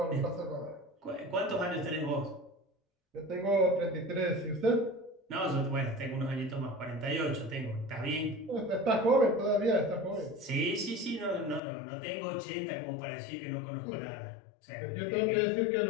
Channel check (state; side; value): drops out; right; at 11.6 s